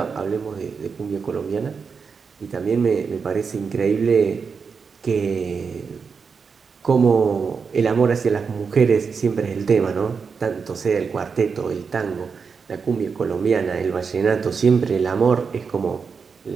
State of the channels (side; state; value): left; quieter; 5.6 dB